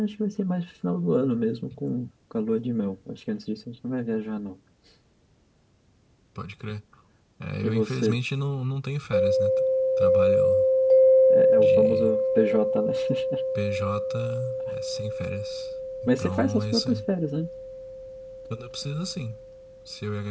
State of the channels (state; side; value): identical; both; correlation 1.00